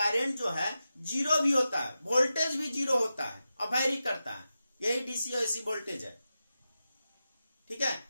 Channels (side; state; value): both; inverted; correlation -0.91